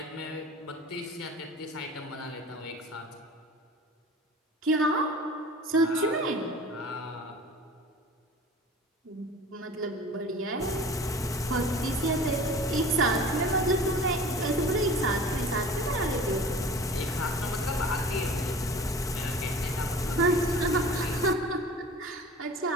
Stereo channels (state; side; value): normal; both; correlation 0.42